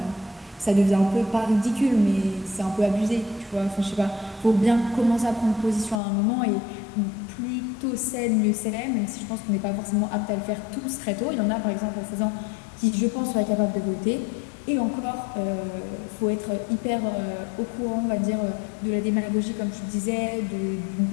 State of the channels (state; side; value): drops out; right; at 6.0 s